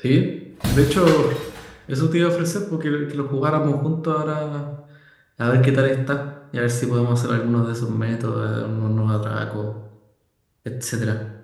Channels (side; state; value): both; identical; correlation 1.00